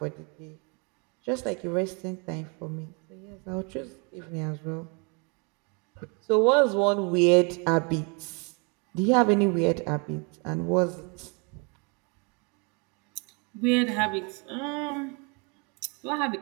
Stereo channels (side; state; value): left; quieter; 33.6 dB